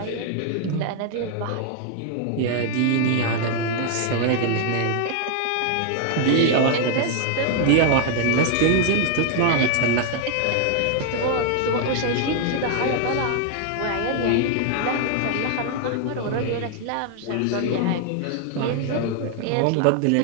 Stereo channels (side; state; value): both; different; correlation 0.00